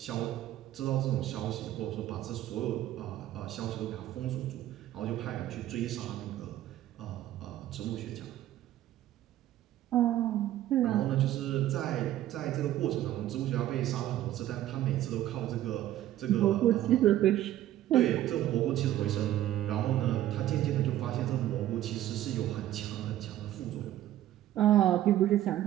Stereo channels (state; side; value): quieter; left; 13.3 dB